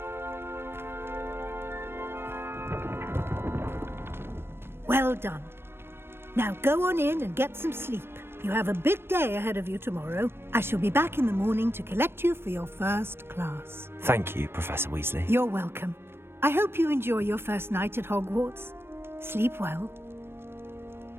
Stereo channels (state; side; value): late; left; 0.12 ms